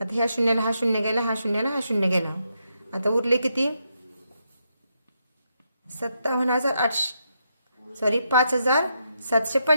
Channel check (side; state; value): both; inverted; correlation -0.81